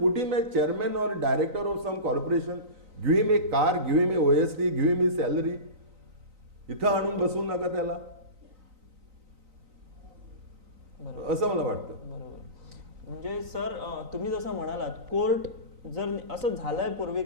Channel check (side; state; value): left; late; 3.9 ms